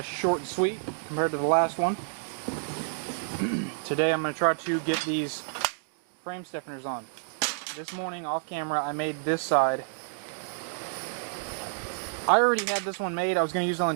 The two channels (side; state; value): left; silent; digital silence